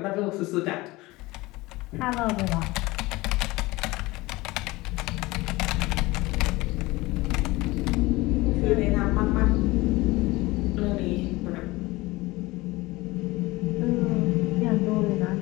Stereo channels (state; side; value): quieter; right; 20.9 dB